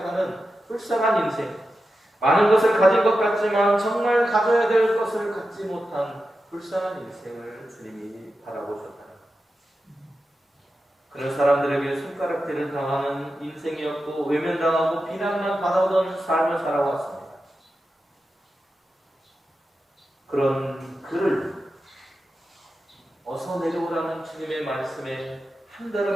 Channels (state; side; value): normal; both; correlation 0.90